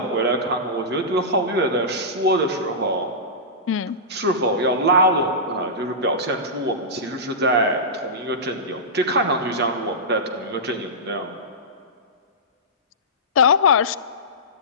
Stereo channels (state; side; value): normal; both; correlation -0.17